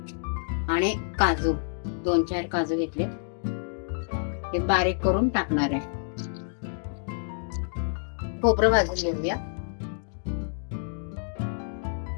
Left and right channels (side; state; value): right; silent; digital silence